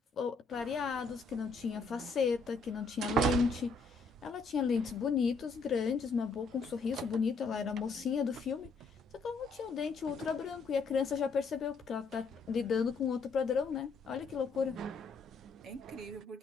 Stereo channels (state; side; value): quieter; right; 4.1 dB